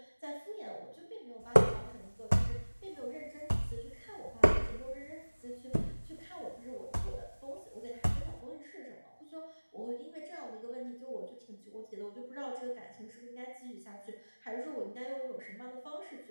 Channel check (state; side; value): inverted; both; correlation -1.00